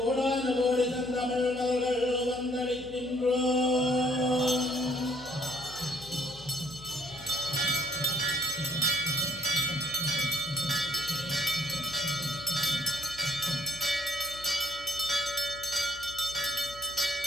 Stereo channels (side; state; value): left; noise; hum, 20 dB below the sound